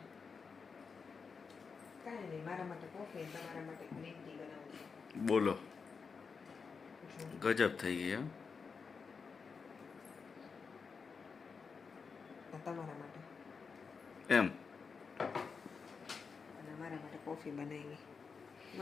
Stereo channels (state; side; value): quieter; right; 5.3 dB